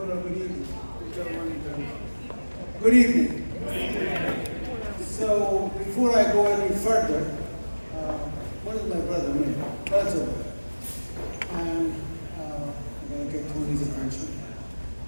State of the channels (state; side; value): inverted; both; correlation -1.00